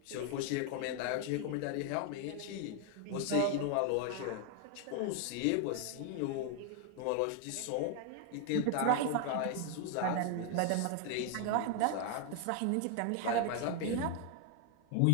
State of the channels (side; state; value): both; different; correlation 0.00